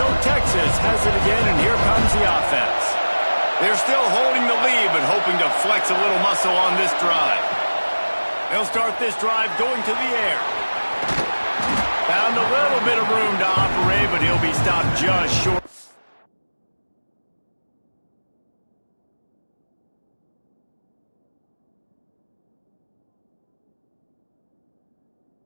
Texas has it again, and here comes the offense. They're still holding the lead, but hoping to flex a little muscle on this drive. They'll start this drive going to the air. Found a little bit of room to operate, but he'll be stopped just short.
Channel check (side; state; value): both; inverted; correlation -1.00